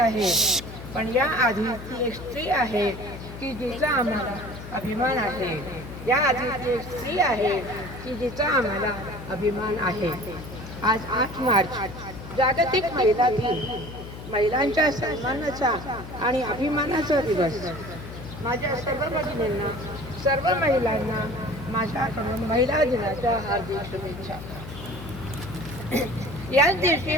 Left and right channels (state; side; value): noise; left; hum, 12 dB below the sound